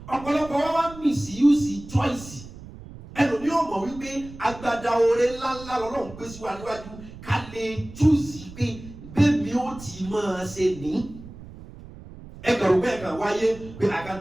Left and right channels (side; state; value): right; noise; rumble, 16 dB below the sound